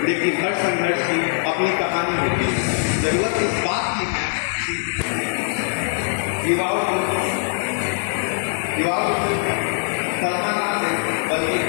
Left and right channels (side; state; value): right; silent; digital silence